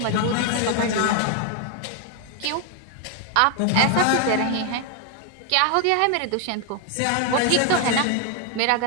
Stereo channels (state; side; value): different; both; correlation 0.01